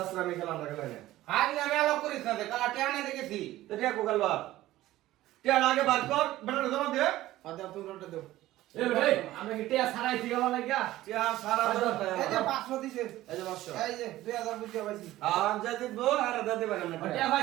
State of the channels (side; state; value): left; quieter; 15.6 dB